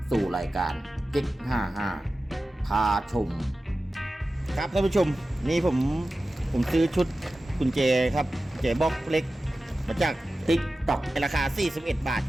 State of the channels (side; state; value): both; normal; correlation 0.94